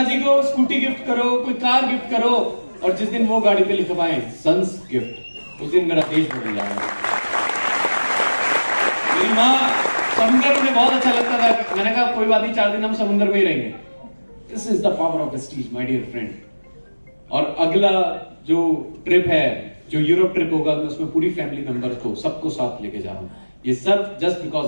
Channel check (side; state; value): both; inverted; correlation -1.00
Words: को स्कूटी गिफ्ट करो, कोई कार गिफ्ट करो, और जिस दिन वो गाड़ी पे लिखवाएं सन्स गिफ्ट, उस दिन मेरा देश बदल जाएगा। मेरी माँ समुद्र में बहुत अच्छा लगता था। मैंने कहा कोई बात नहीं, 4 दिन हम समुद्र में ही रहेंगे। This is the power of Vestige my dear friend. और अगला जो ट्रिप है, जो यूरोप ट्रिप होगा, मैं उसमें पूरी फैमिली मेंबर्स को सबको साथ लेके जा रहा हूँ। ये सब just because